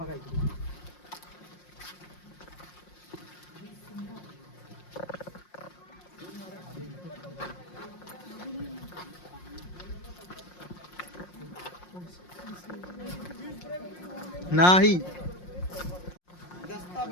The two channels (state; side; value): late; right; 5.6 ms